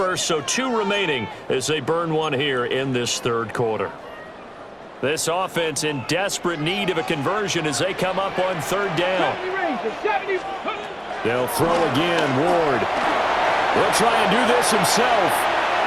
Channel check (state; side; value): identical; both; correlation 1.00